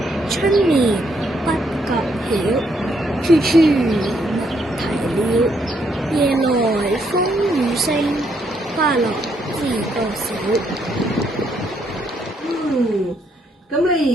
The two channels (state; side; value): normal; both; correlation 0.73